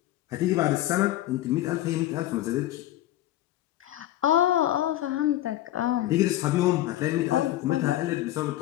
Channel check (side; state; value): right; quieter; 14.3 dB